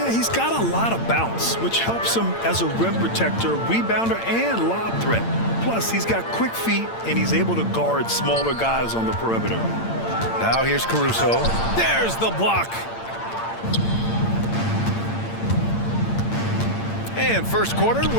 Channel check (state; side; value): late; right; 8.8 ms